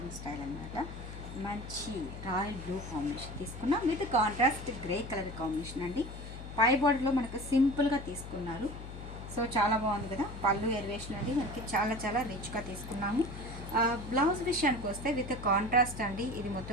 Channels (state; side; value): noise; left; hum, 11 dB below the sound